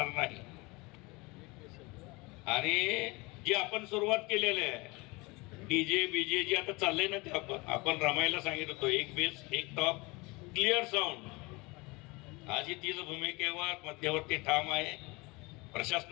नाही. आणि जी आपण सुरुवात केलेली आहे डीजे बीजे जे आता चाललंय ना, ते आपण रमायला सांगितलं होतो, एक बेस एक टॉप क्लिअर साऊंड. आज ही तीच भूमिकेवर मध्यवर्ती ठाम आहे.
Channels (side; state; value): right; quieter; 25.1 dB